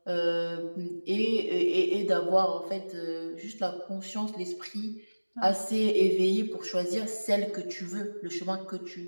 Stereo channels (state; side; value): inverted; both; correlation -1.00